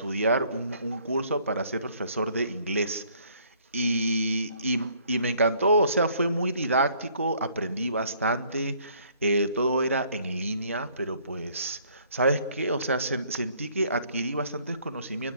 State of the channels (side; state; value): both; inverted; correlation -0.62